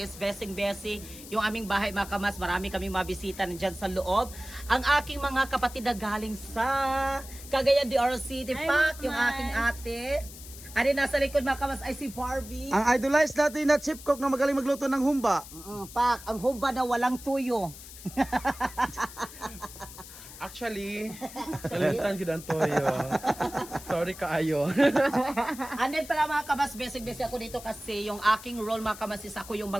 Besing-Besi. Yung aming bahay mga kabats, marami kaming mabisita nandyan sa loob. Ang aking mga kapatid na galing sa Cagayan de Oro City. Pak, yung aking ate. Ari nasa likod mga kabats ay si Barbie. Ang idolize natin na chip cook na magaling magluto ng humba. Pak, ang humba na walang tuyo. Actually, kalimutan ko ang toyo. Sorry kaayo. And then pala mga kabas, basic-basic ako dito kasi yung aking role mga kabas is ako yung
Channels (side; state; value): left; noise; hiss, 15 dB below the sound